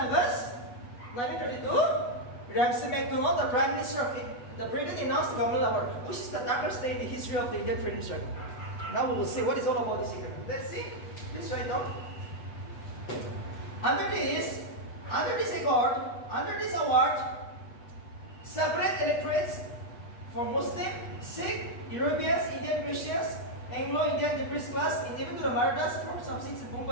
1932, Ramsay MacDonald, the Prime Minister of the Britain, announced the Commonwealth Award, which is the darkest day in the history of the Indian freedom struggle. Now we will see what is all about this agreement. Let's see. Let's write down. Under this award, separate electorates for Muslim, Sikh, Europeans, Indian Christians, Anglo-Indian depressed class, and even to the Marathas for some seats in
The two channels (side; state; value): right; late; 8.2 ms